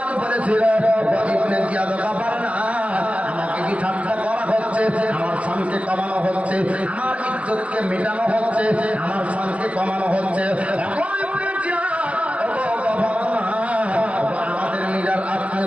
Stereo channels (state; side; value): late; left; 0.064 ms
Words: বলেছিল, ইবনে জিয়াদ গভর্নর, আমাকে কি ঠাট্টা করা হচ্ছে? আমার শানকে কমানো হচ্ছে, আমার ইজ্জতকে মেটানো হচ্ছে, আমার শানকে কমানো হচ্ছে। আমাদের লিডার আপনি